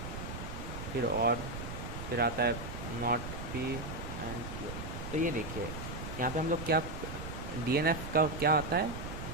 फिर और फिर आता है नॉट P एंड Q। तो ये देखिए यहाँ पे हम लोग क्या DNF का क्या आता है,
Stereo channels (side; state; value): right; noise; rumble, 7 dB below the sound